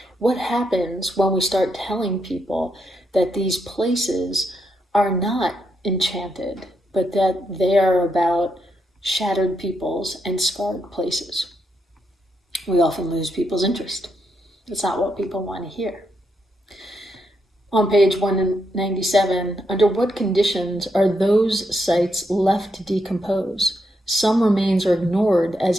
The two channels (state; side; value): normal; both; correlation 0.80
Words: What happens when we start telling people that these places are not enchanted, but that they are about shattered peoples and scarred places? We often lose people's interest. That's not what people want to hear. On page 197, under what conditions are those sites left to decompose? Some remains are ignored as